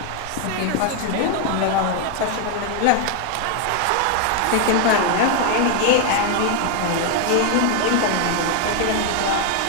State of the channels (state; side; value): different; both; correlation 0.01